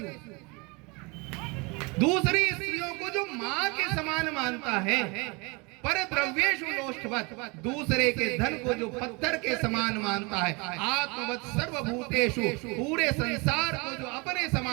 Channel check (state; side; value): quieter; left; 28.5 dB